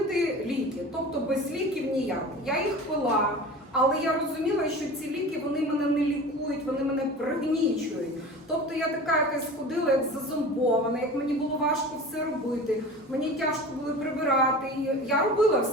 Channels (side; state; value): both; normal; correlation 0.36